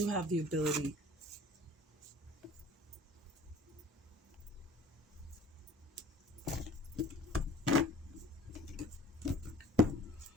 have the ability.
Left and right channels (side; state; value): both; normal; correlation 0.48